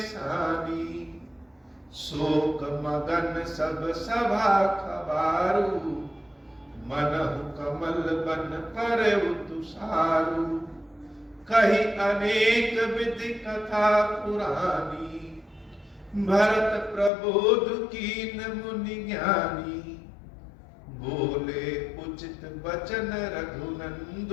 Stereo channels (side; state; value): right; drops out; at 17.1 s